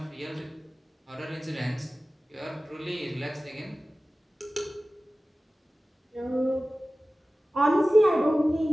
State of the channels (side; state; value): both; normal; correlation 0.96